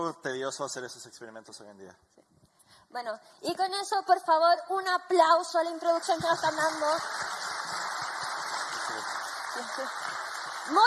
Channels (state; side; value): identical; both; correlation 1.00